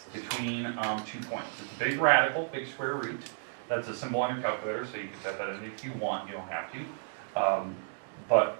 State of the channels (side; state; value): left; silent; digital silence